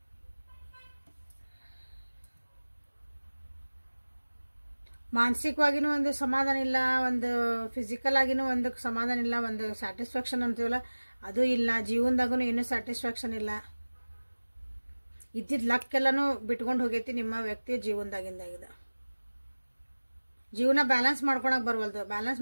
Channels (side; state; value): both; inverted; correlation -1.00